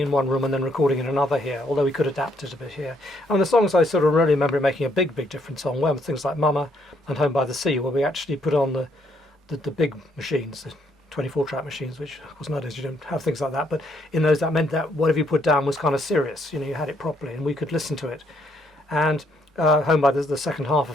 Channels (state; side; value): normal; both; correlation 0.70